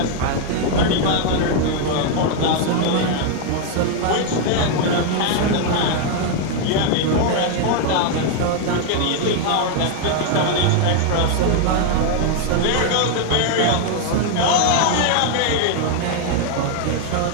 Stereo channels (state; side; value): different; both; correlation 0.00